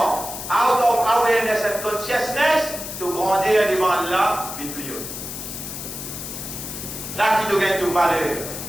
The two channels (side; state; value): left; noise; hiss, 8 dB below the sound